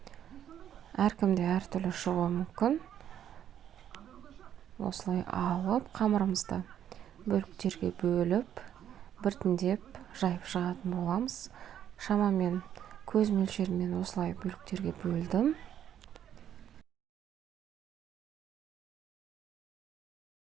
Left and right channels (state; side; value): quieter; left; 10.1 dB